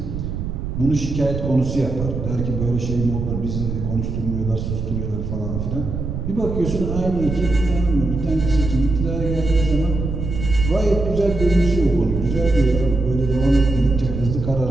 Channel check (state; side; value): noise; right; rumble, 4 dB below the sound